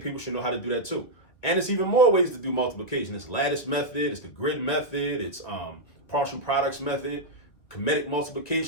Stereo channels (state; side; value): late; right; 2.3 ms